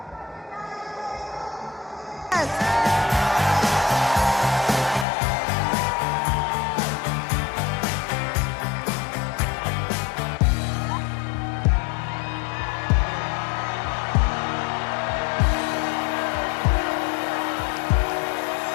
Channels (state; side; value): drops out; right; at 5.1 s